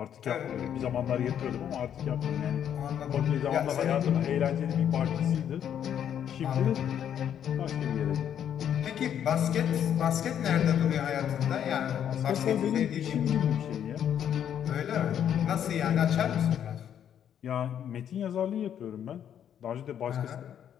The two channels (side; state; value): right; quieter; 9.4 dB